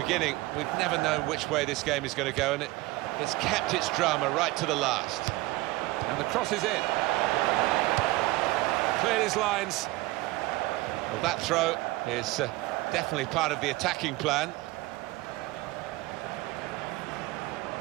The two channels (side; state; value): left; quieter; 19.9 dB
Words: we've never known which way this game is going to go, and it's kept its drama right to the last. And the cross is in. Cleared his lines. Well, that throw is definitely part of the attacking plan.